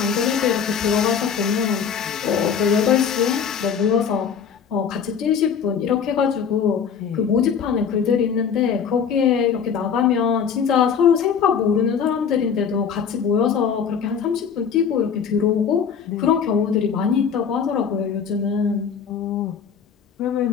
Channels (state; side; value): quieter; right; 7.1 dB